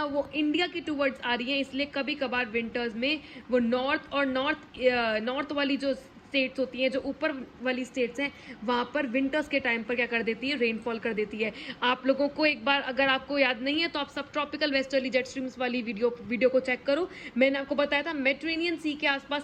वो इंडिया की टूवर्ड्स आ रही हैं। इसलिए कभी कभार विंटर्स में वो नॉर्थ और नॉर्थ वाली जो स्टेट्स होती हैं, जो ऊपर वाली स्टेट्स हैं, वहाँ पर विंटर्स के टाइम पर क्या कर देती है, रेनफॉल कर देती है। आप लोगों को एक बार अगर आपको याद नहीं है तो आप सब ट्रॉपिकल वेस्टर्ली जेट स्ट्रीम्स वाली वीडियो को चेक करो। मैंने आपको बताया था मेडिटेरेनियन सी के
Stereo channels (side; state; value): both; identical; correlation 1.00